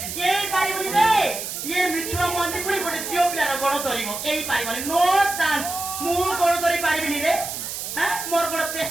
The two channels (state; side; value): noise; right; hiss, 6 dB below the sound